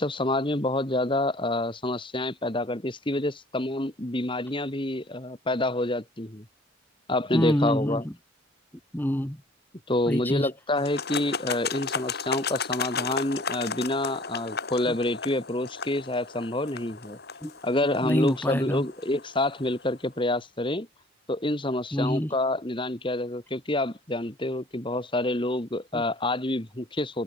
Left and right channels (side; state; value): both; normal; correlation 0.53